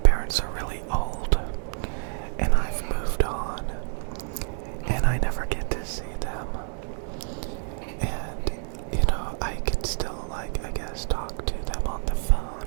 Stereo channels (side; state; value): left; silent; 60 dB below the other